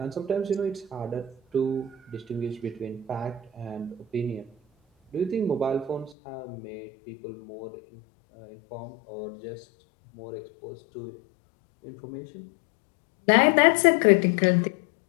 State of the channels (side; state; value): right; drops out; at 6.2 s